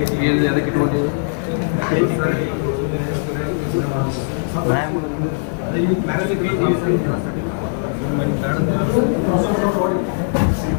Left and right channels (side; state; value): right; silent; digital silence